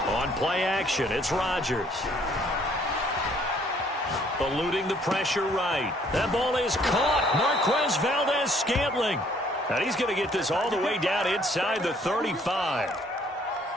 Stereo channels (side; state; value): both; normal; correlation 0.63